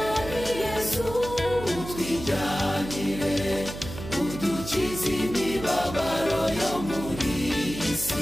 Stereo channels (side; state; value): right; noise; hum, 10 dB below the sound